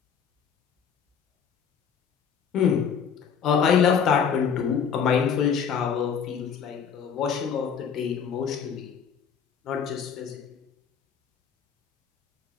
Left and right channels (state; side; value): quieter; right; 7.1 dB